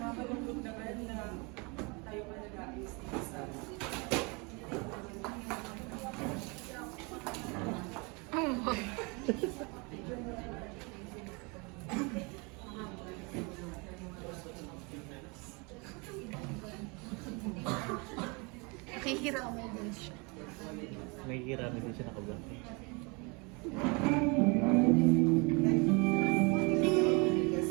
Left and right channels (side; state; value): left; quieter; 29.9 dB